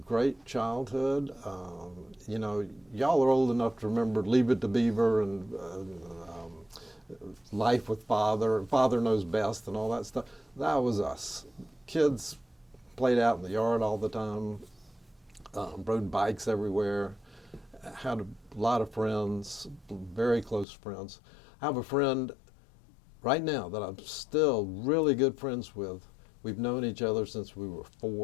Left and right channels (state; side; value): drops out; right; at 20.7 s